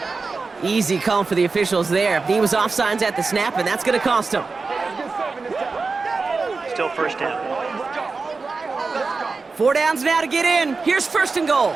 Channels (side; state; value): left; quieter; 4.2 dB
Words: Easy call for the officials there. He was offsides at the snap, and that's going to cost him. Still first down. 4 downs now to get in. Here's first and goal.